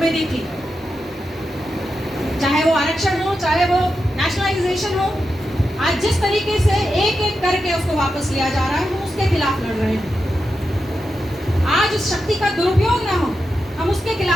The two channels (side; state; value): both; normal; correlation 0.88